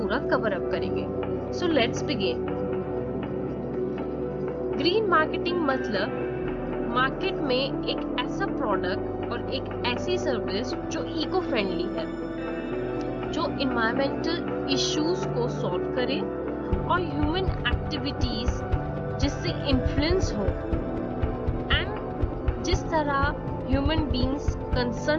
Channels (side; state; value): both; identical; correlation 1.00